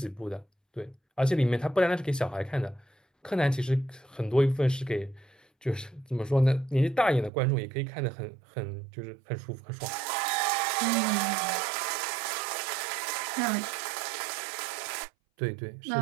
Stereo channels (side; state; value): left; drops out; at 7.3 s